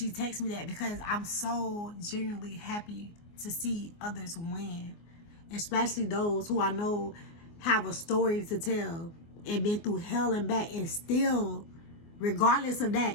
texted me that, because I'm so genuinely happy to see others win, especially those who I know have a story to tell and been through hell and back, and still, regardless of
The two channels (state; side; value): late; right; 24 ms